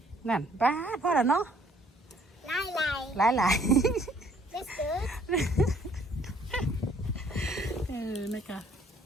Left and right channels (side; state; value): both; normal; correlation 0.61